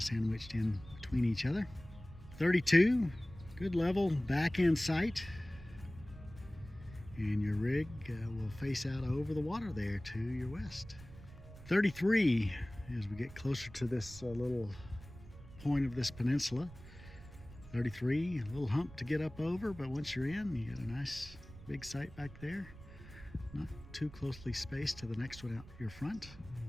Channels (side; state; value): right; noise; rumble, 17 dB below the sound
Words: sandwiched in between each other. 32, good level back end site. And your rig will face out over the water there to your west. 33, as we get closer to this little point of this peninsula. 33, a little hump to get up over, but once you're in, you got a nice big site back there. Not too closely spaced to the next one out your front.